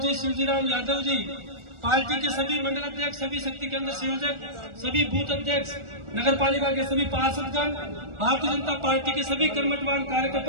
शिवजीराम यादव जी, पार्टी के सभी मंडल अध्यक्ष, सभी शक्ति केंद्र संयोजक, सभी बूथ अध्यक्ष, नगर पालिका के सभी पार्षदगण, भारतीय जनता पार्टी के सभी कर्मठवान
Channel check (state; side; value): late; left; 1.4 ms